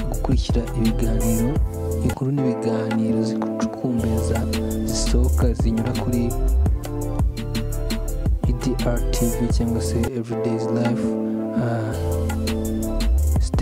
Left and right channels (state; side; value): identical; both; correlation 1.00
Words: gukurikira ibiganiro, inkuru n'ibiganiro zikucukumbeza zisohoka zinyura kuri EDR TV cyangwa se Everyday's Life.